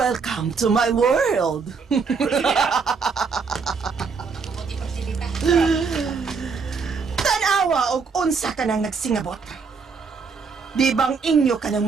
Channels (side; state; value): left; quieter; 5.2 dB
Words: to my world! Tanawa og unsa ka nang nagsingabot. Di bang inyo ka ng